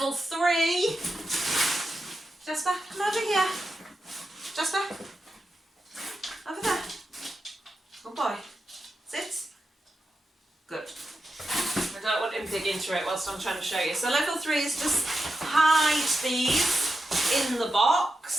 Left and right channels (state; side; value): normal; both; correlation 0.89